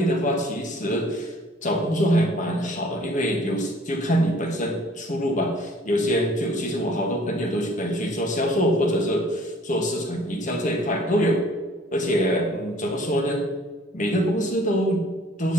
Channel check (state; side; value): normal; both; correlation 0.54